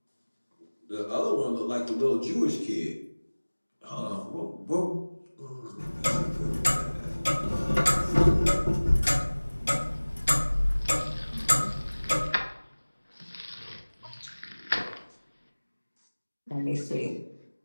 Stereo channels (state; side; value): inverted; both; correlation -1.00